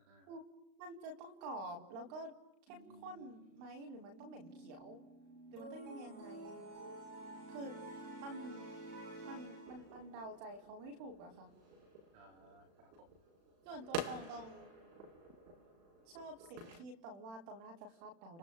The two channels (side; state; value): left; late; 36 ms